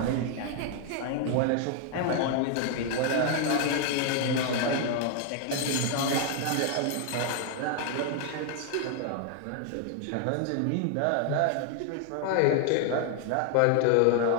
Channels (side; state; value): both; different; correlation 0.00